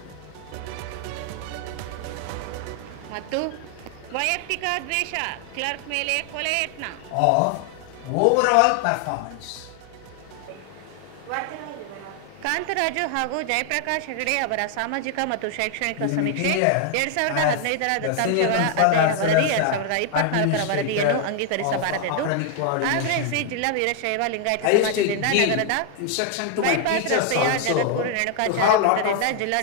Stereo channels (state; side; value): different; both; correlation 0.00